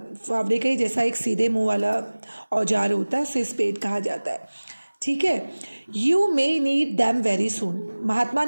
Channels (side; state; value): both; inverted; correlation -1.00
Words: फावड़े का ही जैसा एक सीधे मुंह वाला औजार होता है, उसे स्पेड कहा जाता है। ठीक है। You may need them very soon, महात्मा